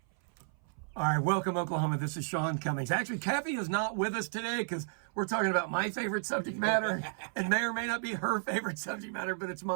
All right, welcome, Oklahoma. This is Sean Cummings. Actually, Kathy is not with us today because we're talking about my favorite subject matter and may or may not be her favorite subject matter, but it's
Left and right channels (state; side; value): silent; left; 56 dB below the other